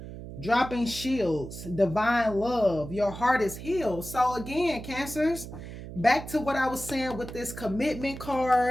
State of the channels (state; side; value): noise; right; hum, 11 dB below the sound